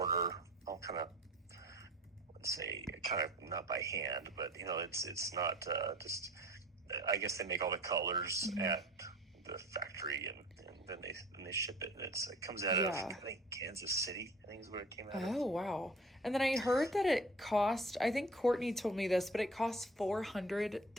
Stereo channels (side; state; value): both; normal; correlation 0.44